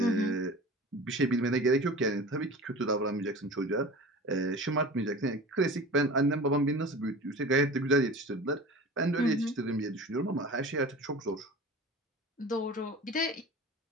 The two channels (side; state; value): both; normal; correlation 0.37